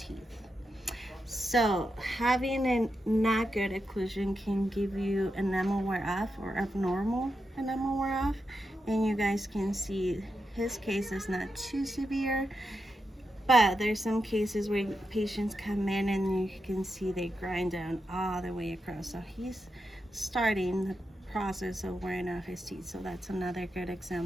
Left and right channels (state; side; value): normal; both; correlation 0.87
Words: So having a not good occlusion can give you enamel wear off, or abnormal enamel wear off. And you guys can see his case is not too severe. But there's some cases where patients come in and you can see they grind down all the way across. So he's starting the process of wearing off his teeth. So that's another good